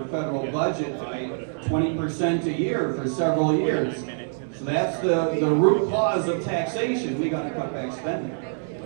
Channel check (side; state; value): left; silent; digital silence